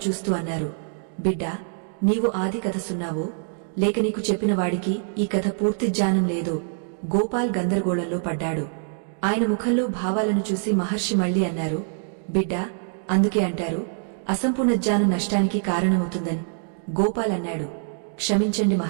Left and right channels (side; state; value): left; silent; digital silence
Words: చూస్తూ అన్నారు. బిడ్డా, నీవు ఆది కథ సున్నావో, లేక నీకు చెప్పిన వాడికి ఈ కథ పూర్తి జ్ఞానం లేదో? గోపాల్ గందరగోళంలో పడ్డాడు. ఆయన ముఖంలో భావాలను చూసి మహర్షి మళ్లీ అన్నారు. బిడ్డా, అందుకే అంటారు అసంపూర్ణ జ్ఞానం నష్టానికి కారణమవుతుందని. గోపాల్ అన్నాడు. క్షమించండి